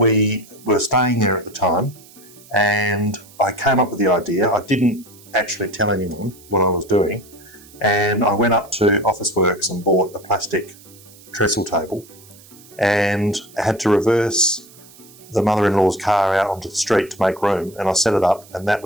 were staying there at the time, and I came up with the idea. I didn't actually tell anyone what I was doing, and I went up to Officeworks and bought a plastic trestle table and had to reverse the mother-in-law's car out onto the street to make room, and I set it up, and that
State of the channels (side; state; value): right; noise; hiss, 23 dB below the sound